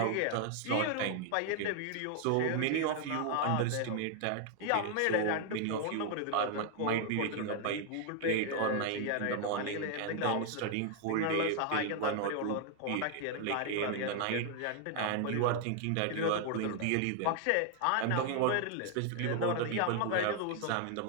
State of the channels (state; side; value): different; both; correlation 0.00